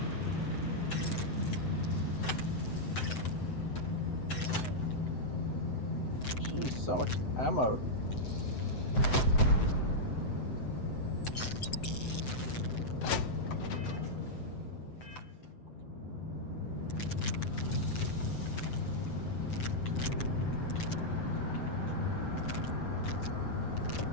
Jeez, so much ammo.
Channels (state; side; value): late; right; 7.9 ms